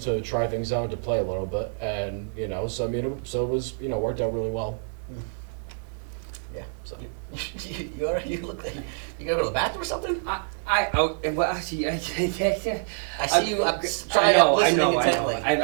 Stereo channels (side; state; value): left; silent; 61 dB below the other